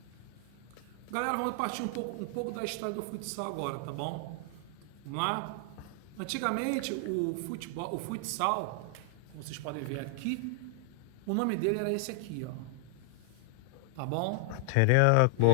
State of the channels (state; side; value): different; both; correlation 0.00